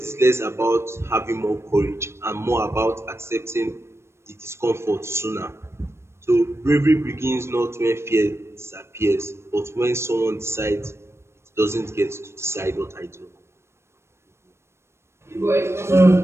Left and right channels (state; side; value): late; left; 0.13 ms